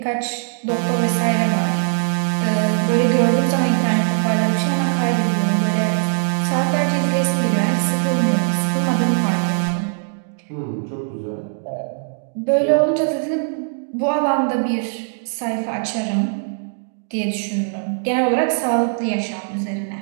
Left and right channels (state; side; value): silent; left; digital silence